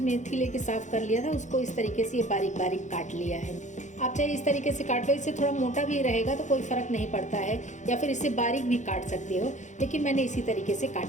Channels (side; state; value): right; late; 0.35 ms